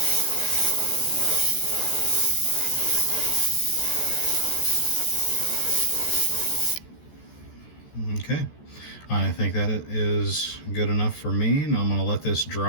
Okay, I think that it is good enough for me, and I'm going to let this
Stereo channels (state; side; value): late; right; 14 ms